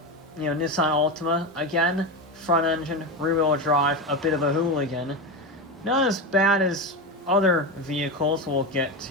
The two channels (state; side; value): normal; both; correlation 0.17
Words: Nissan Altima, again, front engine, rear wheel drive, a bit of a hooligan. Not as bad as other vehicles we'll get